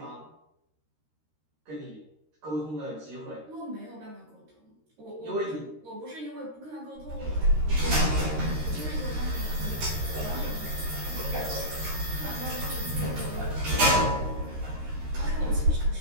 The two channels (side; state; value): left; late; 13 ms